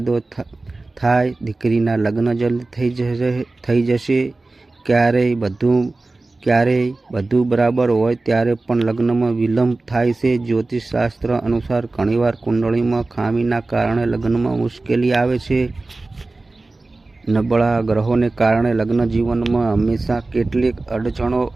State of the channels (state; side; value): quieter; left; 3.2 dB